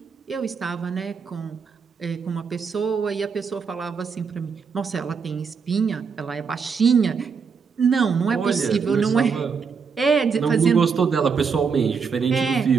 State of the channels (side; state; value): left; quieter; 5.8 dB